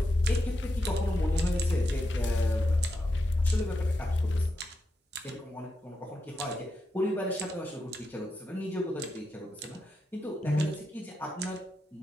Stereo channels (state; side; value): normal; both; correlation 0.86